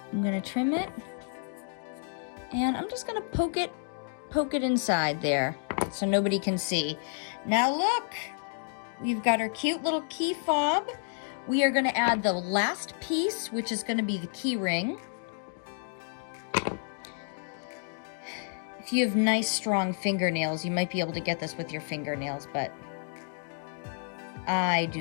I'm going to trim it, and I'm just going to poke it inside there so nobody can see. Now look, we've got our cute little key fob. We are going to add the last piece, which is going to be the key ring. If you have nice strong fingernails, you might be able to get this with your fingernails, but I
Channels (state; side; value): silent; right; 58 dB below the other